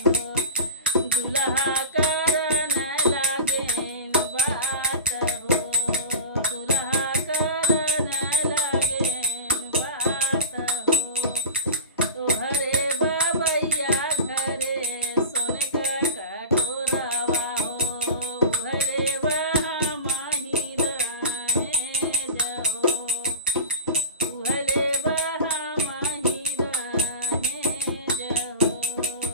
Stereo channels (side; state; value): both; inverted; correlation -0.32